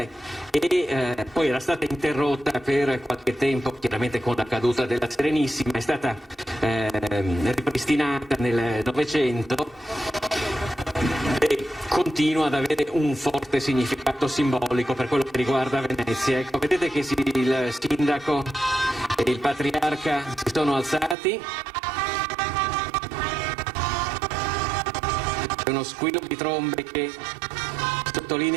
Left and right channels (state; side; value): drops out; left; at 21.2 s